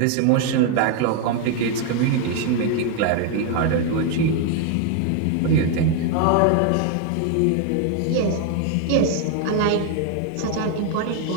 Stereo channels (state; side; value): different; both; correlation 0.01